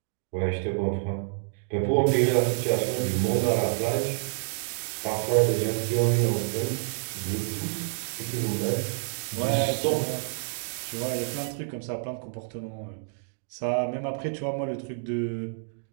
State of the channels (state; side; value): silent; left; digital silence